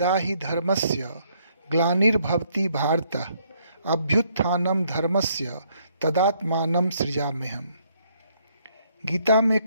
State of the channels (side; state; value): both; inverted; correlation -0.69